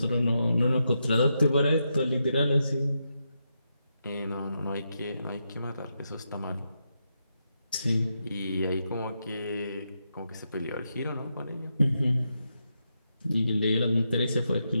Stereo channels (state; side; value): inverted; both; correlation -0.84